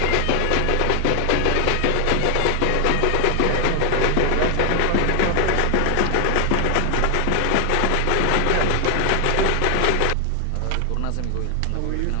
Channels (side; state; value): both; different; correlation 0.00